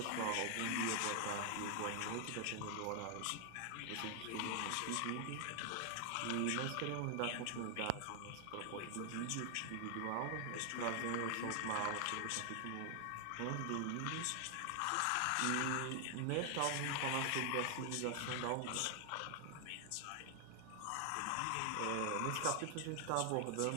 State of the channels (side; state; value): both; different; correlation 0.00